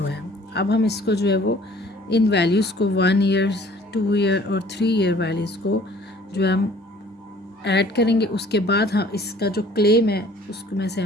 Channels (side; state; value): both; normal; correlation 0.54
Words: है। अब हम इसको जो है वो इन वैल्यूज़ को 1 ईयर 2 ईयर और 3 ईयर वैल्यूज़ को जो है हम ऐड करेंगे। उसके बाद हम इसका जो क्लेम है उसको में से